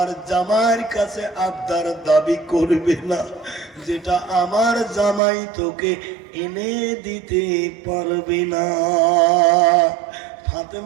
জামাইয়ের কাছে আবদার দাবি করবে না যেটা আমার জামাই তোকে এনে দিতে পারবে না।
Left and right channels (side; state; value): left; drops out; at 5.2 s